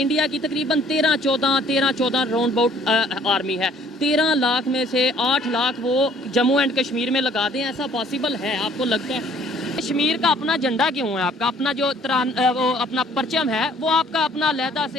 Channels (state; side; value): normal; both; correlation 0.58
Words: की तकरीबन 13-14 राउंड अबाउट आर्मी है। 13 लाख में से 8 लाख वो जम्मू एंड कश्मीर में लगा दें, ऐसा पॉसिबल है? आपको लगता है? कश्मीर का अपना झंडा क्यों है आपका? अपना जो वो अपना परचम है वो आपका अपना लहदा